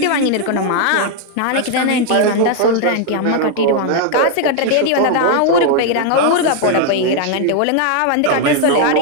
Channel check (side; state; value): both; different; correlation 0.00